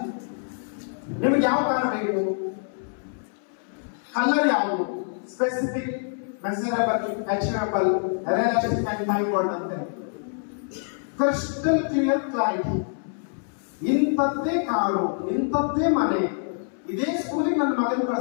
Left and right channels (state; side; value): silent; right; 61 dB below the other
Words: ನಿಮಗೆ ಯಾವ ಕಾರಣ ಬೇಕು? ಕಲರ್ ಯಾವುದು? Specific, measurable, achievable, realistic and time bound ಅಂತ. Crystal clear clarity. ಇಂಥದ್ದೇ ಕಾರು, ಇಂಥದ್ದೇ ಮನೆ, ಇದೇ ಸ್ಕೂಲಿಗೆ ನನ್ನ ಮಗನ